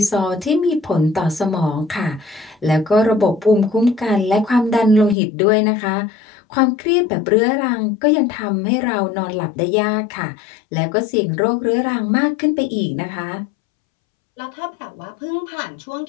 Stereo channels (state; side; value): drops out; right; at 5.2 s